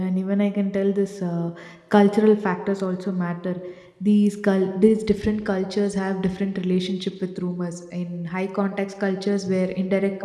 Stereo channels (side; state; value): both; identical; correlation 1.00